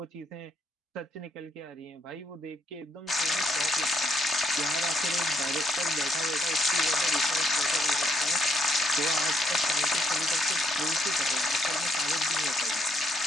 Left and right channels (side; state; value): both; normal; correlation 0.74